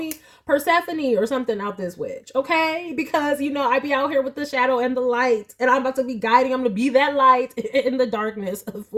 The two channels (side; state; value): both; identical; correlation 1.00